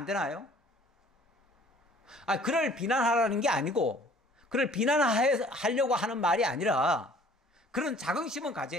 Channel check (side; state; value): both; normal; correlation 0.53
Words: 되나요? 그를 비난하라는 게 아니고, 그를 비난하려고 하는 말이 아니라 그런 자긍심은